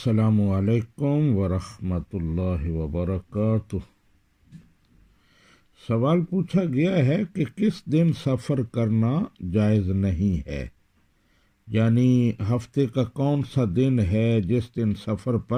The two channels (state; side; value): identical; both; correlation 1.00